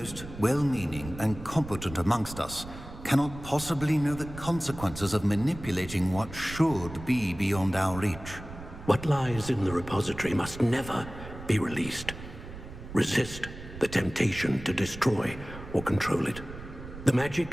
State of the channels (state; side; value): noise; right; rumble, 13 dB below the sound